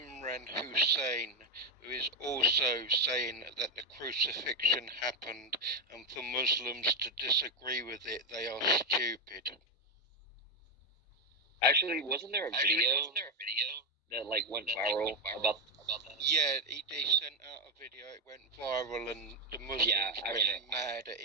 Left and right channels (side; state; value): both; normal; correlation 0.07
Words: Hussain, who is also saying that the crucifixion happened, and for Muslims to disagree with it, they are stupid. Actually, wasn't there a video that like went viral about that? Yeah, he sent out a video. It went viral, and the Muslims went mad at